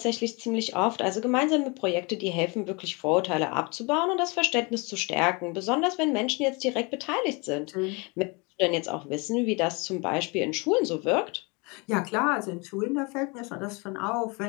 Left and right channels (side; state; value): right; quieter; 29.1 dB